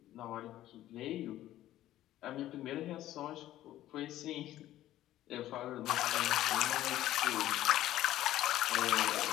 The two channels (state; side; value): quieter; right; 13.8 dB